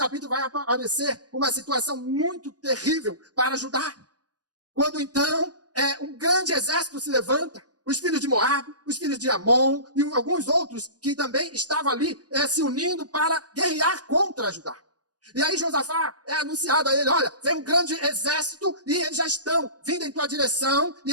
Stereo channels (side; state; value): left; late; 0.68 ms